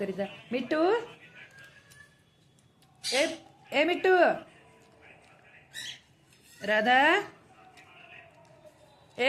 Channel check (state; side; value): identical; both; correlation 1.00